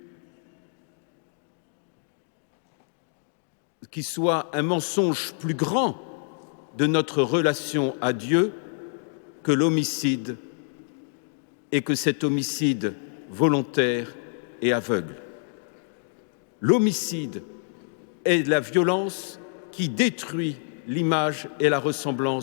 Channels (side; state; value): right; silent; digital silence